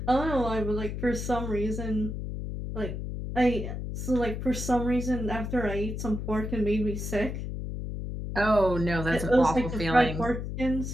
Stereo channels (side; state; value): left; noise; hum, 5 dB below the sound